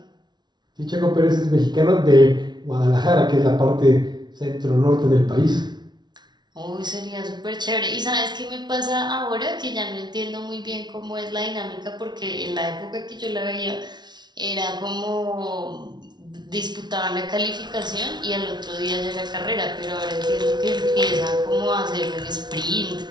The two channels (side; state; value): left; late; 0.20 ms